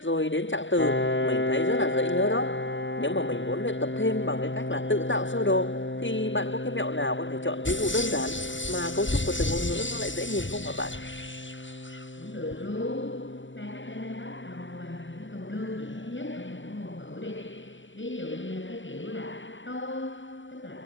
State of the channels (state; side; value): late; right; 0.55 ms